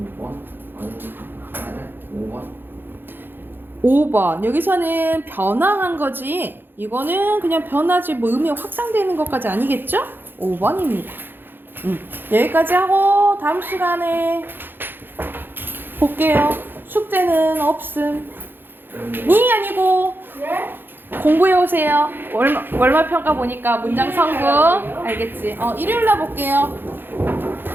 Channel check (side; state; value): left; late; 0.098 ms